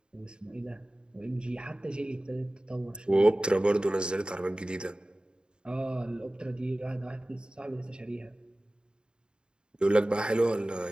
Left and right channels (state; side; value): late; left; 0.050 ms